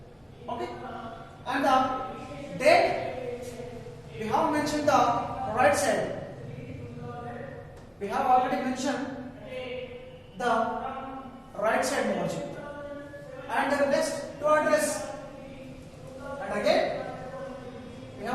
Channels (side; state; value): both; identical; correlation 1.00